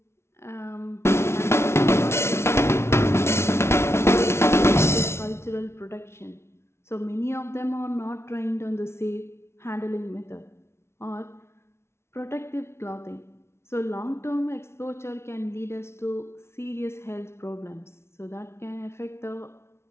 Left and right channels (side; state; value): right; late; 0.13 ms